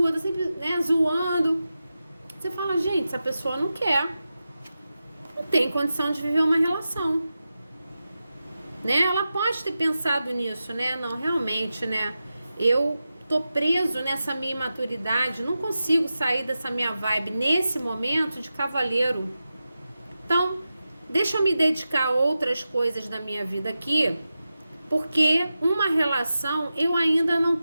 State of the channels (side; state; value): both; inverted; correlation -0.92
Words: tá sempre, né, zoando. Você fala, gente, essa pessoa não quer, não tem condição de viver uma relação, né? Ela pode ter pensado nisso, né? Não, realmente, né? Eu tô preso nessa minha imaturidade, não consigo sair dessa minha vibe nesse momento de cavaleiro. Então, deixa eu me dedicar a outras coisas da minha vida aqui, porque uma relação eu ainda não